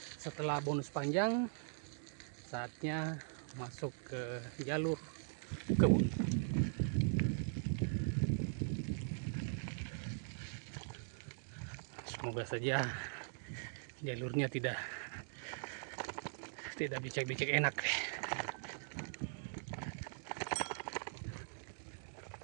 Setelah bonus panjang, saatnya masuk ke jalur kebun. Semoga saja jalurnya tidak becek-becek, enak.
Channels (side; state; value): left; silent; digital silence